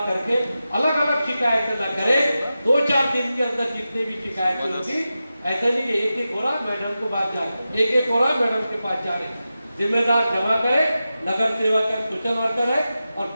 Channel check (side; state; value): both; inverted; correlation -0.92